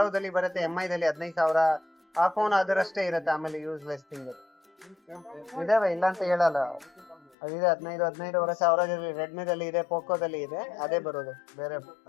ಬರುತ್ತೆ, MI ದಲ್ಲಿ 15,000 ಆ ಫೋನ್ ಅದರಷ್ಟೇ ಇರುತ್ತೆ. ಆಮೇಲೆ ಯೂಸ್ಲೆಸ್ ಥಿಂಗ್ ಇದಾವೆ, ಇಲ್ಲ ಅಂತ ಹೇಳಲ್ಲ. ಅದಿದೆ 15,000 ರೆಡ್ಮಿದಲ್ಲಿ ಇದೆ, ಪೋಕೋದಲ್ಲಿ ಇದೆ, ಅದೇ ಬರೋದು ಬೇರೆ.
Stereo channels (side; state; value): right; drops out; at 7.4 s